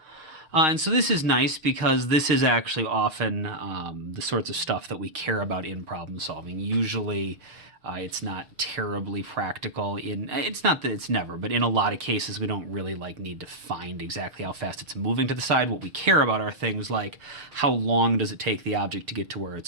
And so this is nice because this is actually often the sorts of stuff that we care about in problem solving. Usually it's not terribly practical it's not that it's never, but in a lot of cases we don't really need to find exactly how fast it's moving to the side. What we care about are things like how long does it take the object to get to where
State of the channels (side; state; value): left; late; 6.5 ms